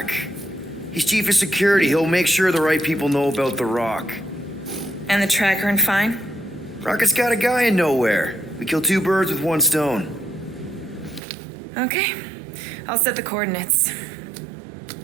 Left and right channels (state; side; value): drops out; left; at 11.2 s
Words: He's chief of security. He'll make sure the right people know about the rock. And the tracker and fine? Rocket's got a guy in nowhere. We kill two birds with one stone. Okay. I'll set the coordinates.